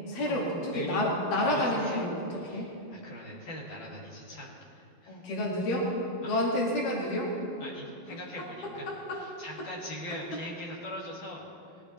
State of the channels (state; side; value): late; right; 12 ms